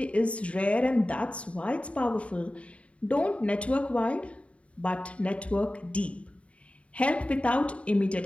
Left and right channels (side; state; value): right; late; 0.062 ms